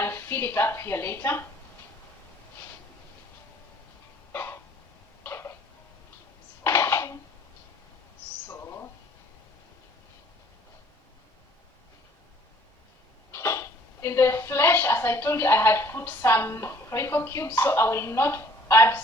fill it up here later. So in the flesh, as I told you, I had put some Royco cubes, so I will not add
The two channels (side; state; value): both; normal; correlation 0.56